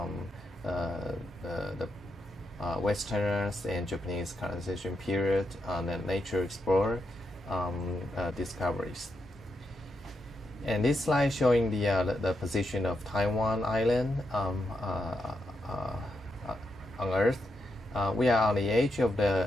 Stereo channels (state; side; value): normal; both; correlation 0.83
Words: the Westerners and Japanese colonization period, the nature explorer discoveries. And this slide showing the position of Taiwan Island on Earth. We are on the edge of